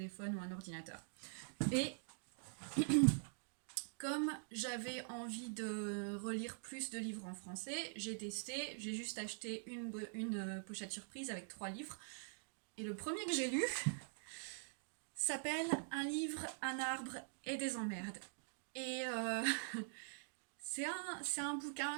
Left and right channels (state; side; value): silent; left; digital silence